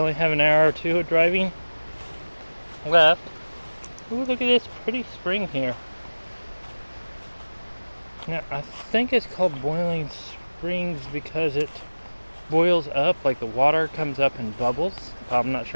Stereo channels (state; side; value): inverted; both; correlation -1.00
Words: have an hour or two of driving left. Ooh, look at this pretty spring here. Now, I think it's called Boiling Springs because it boils up, like the water comes up and bubbles. I'm not